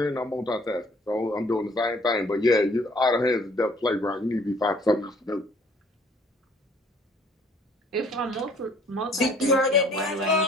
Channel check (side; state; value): both; normal; correlation 0.58